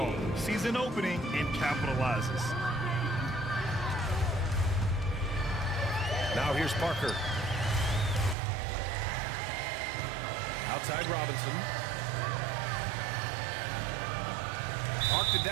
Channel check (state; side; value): drops out; left; at 8.3 s